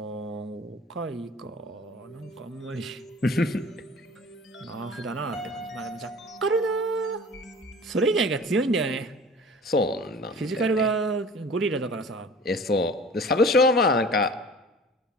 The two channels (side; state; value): both; normal; correlation 0.43